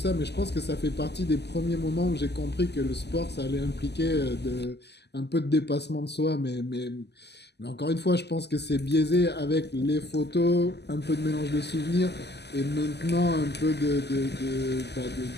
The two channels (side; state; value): right; late; 0.49 ms